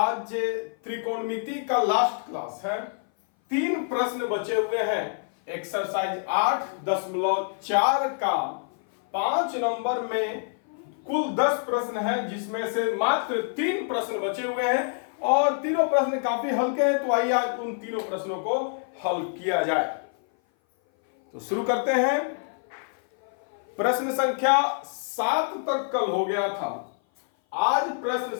त्रिकोणमिति का लास्ट क्लास है। 3 प्रश्न बचे हुए हैं। एक्सरसाइज 8.4 का 5 नंबर में कुल 10 प्रश्न है, जिसमें से मात्र 3 प्रश्न बचे हुए हैं और तीनों प्रश्न काफी हल्के हैं। तो आइए आज उन तीनों प्रश्नों को हल किया जाए। तो शुरू करते हैं। प्रश्न संख्या 7 तक कल हो गया था। आज प्रश्न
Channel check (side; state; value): right; silent; 57 dB below the other